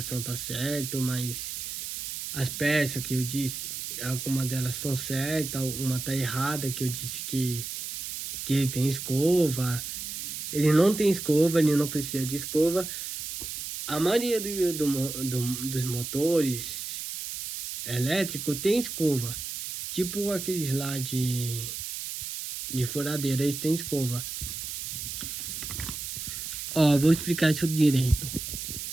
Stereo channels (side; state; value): right; noise; hiss, 6 dB below the sound